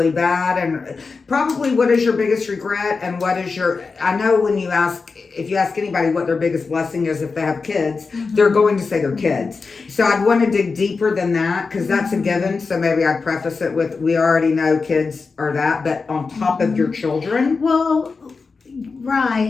bad. And probably, what is your biggest regret, and what is your, I know when you ask, if you ask anybody what their biggest blessing is if they have kids, they're going to say their kids. So I'd want to dig deeper than that, because that's a given. So maybe I'd preface it with, we already know kids are that, but on top of your children. Well,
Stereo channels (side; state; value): right; quieter; 4.5 dB